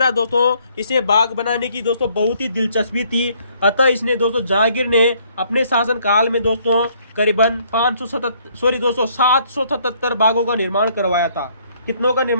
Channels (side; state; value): both; inverted; correlation -0.65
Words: दोस्तों इसे बाग बनाने की दोस्तों बहुत ही दिलचस्पी थी। अतः इसने दोस्तों जहांगीर ने अपने शासन काल में दोस्तों करीबन 777 बागों का निर्माण करवाया था। कितनों का